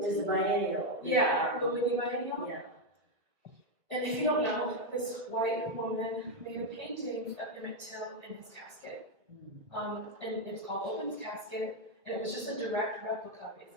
was a biennial. Yeah, the Whitney biennial. Yeah. And if you don't know, this white woman made a painting of Emmett Till in his casket. And it's called Open's Casket, and it was just a direct replica,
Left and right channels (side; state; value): left; late; 1.5 ms